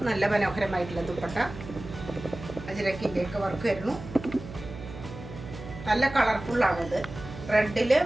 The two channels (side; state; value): right; noise; hum, 13 dB below the sound